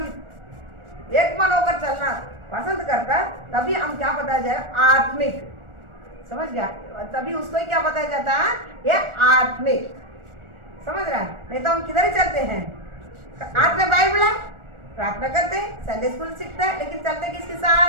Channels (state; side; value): late; left; 1.4 ms